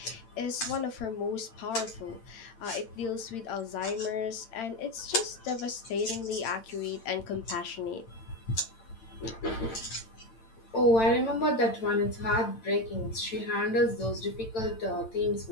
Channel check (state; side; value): late; right; 8.9 ms